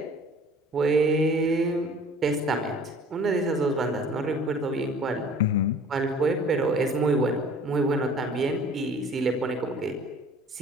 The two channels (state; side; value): normal; both; correlation 0.49